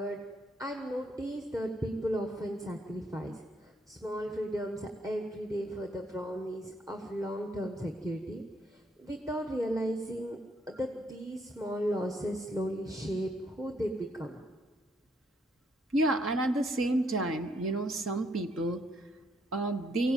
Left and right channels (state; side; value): normal; both; correlation 0.72